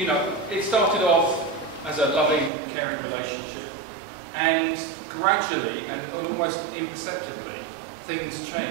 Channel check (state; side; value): drops out; left; at 2.5 s